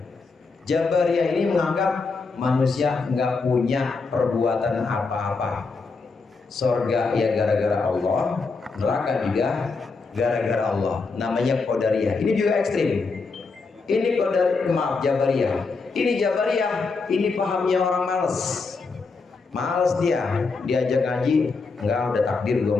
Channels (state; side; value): quieter; right; 4.3 dB